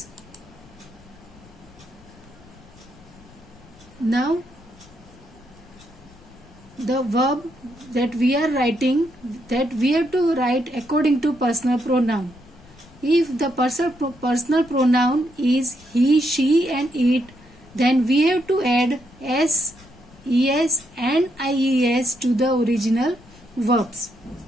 Now the verb that we are writing, that we have to write according to personal pronoun. If the personal pronoun is he, she and it, then we have to add s, es and ies to the original verbs.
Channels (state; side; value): noise; left; rumble, 24 dB below the sound